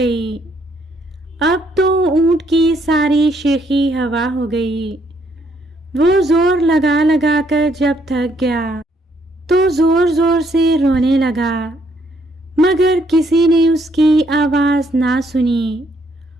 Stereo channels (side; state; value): both; normal; correlation 0.71